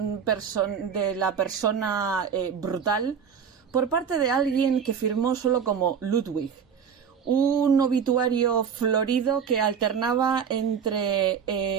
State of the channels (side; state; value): left; quieter; 7.2 dB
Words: la persona brutal por parte de alguien que firmó solo como Ludwig. Un obituario florido que alternaba entre